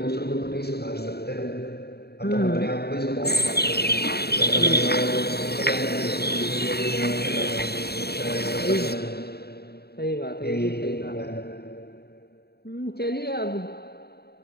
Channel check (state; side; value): late; right; 0.47 ms